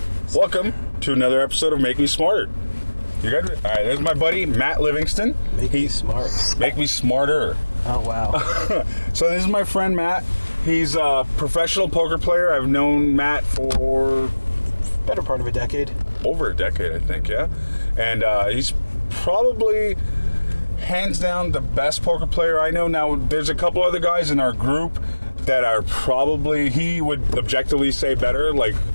Welcome to another episode of Make Me Smarter. You good? All right, there's my buddy, Matt Livingston. Make me smart. Make me smarter. Oh, wow. So this is my friend, Matt. He's a professional poker player. I've known Matt for... Better part of a decade. Over a decade, I think, yeah. And he's probably... hands down the best poker player I know. Now, there's a couple other guys in our group that are probably, he would objectively say better, like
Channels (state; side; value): inverted; both; correlation -1.00